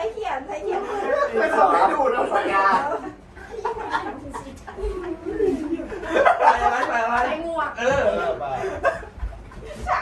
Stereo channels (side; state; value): both; identical; correlation 1.00